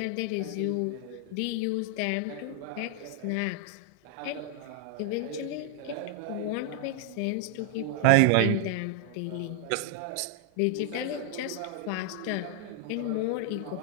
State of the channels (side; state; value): both; different; correlation 0.00